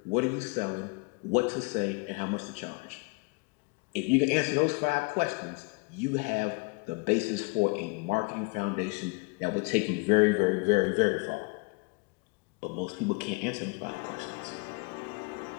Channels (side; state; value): right; quieter; 29.7 dB